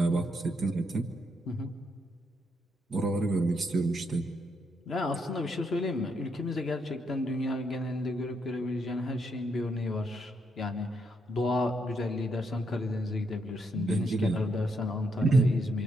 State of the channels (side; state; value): both; normal; correlation 0.77